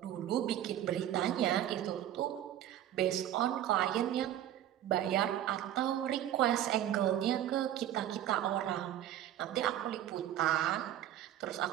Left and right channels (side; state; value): left; quieter; 11.9 dB